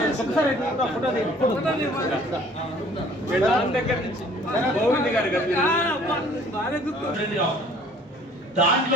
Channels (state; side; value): normal; both; correlation 0.54